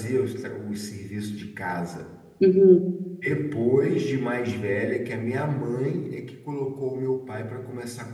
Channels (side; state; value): both; identical; correlation 1.00